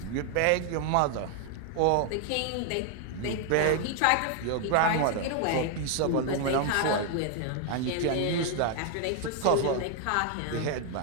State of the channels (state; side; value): different; both; correlation 0.00